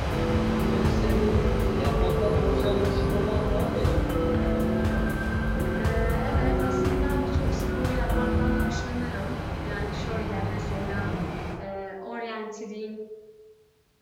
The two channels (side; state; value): both; identical; correlation 1.00